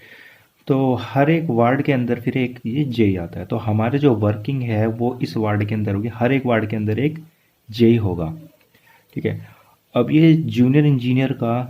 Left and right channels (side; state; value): both; identical; correlation 1.00